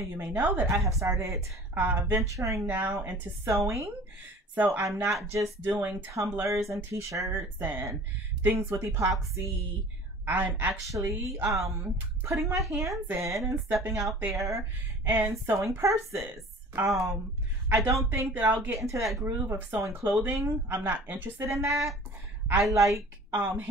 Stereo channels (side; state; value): both; normal; correlation 0.45